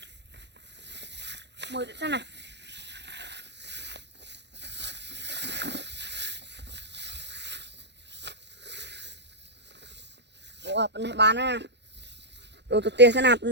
Mời đến xem này. Ồ, bên này bán à. Đồ tụi tiền sẽ nạp.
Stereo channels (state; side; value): late; left; 0.50 ms